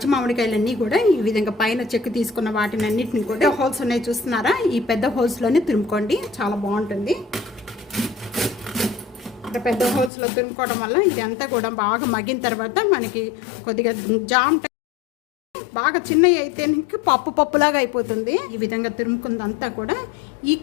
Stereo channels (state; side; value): drops out; right; at 10.1 s